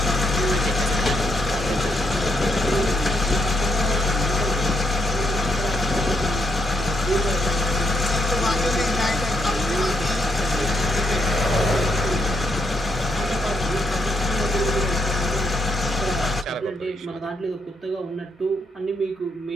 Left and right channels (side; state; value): both; normal; correlation 0.76